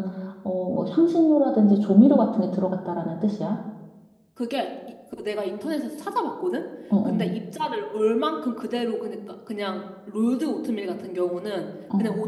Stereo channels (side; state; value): both; identical; correlation 1.00